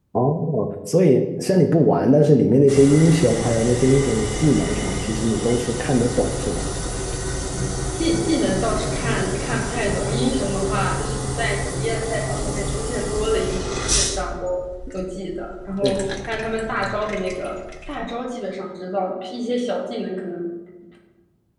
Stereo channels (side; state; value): both; identical; correlation 1.00